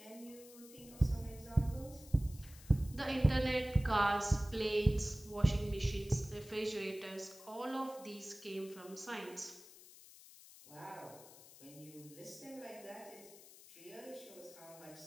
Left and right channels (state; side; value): noise; left; hiss, 19 dB below the sound